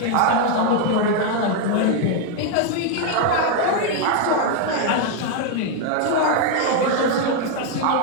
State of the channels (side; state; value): both; different; correlation 0.01